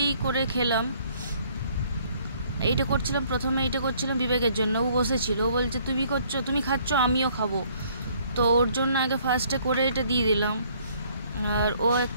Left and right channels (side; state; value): both; inverted; correlation -0.62